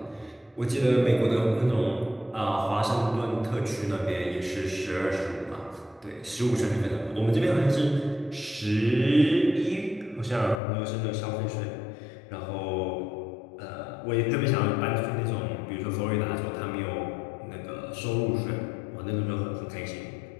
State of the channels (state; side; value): drops out; right; at 10.6 s